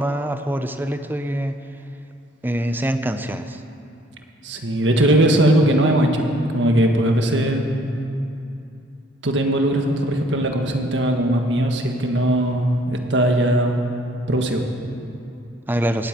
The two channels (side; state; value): both; normal; correlation 0.60